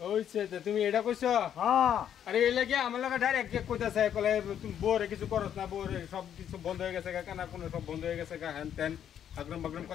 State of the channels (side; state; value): right; quieter; 9.5 dB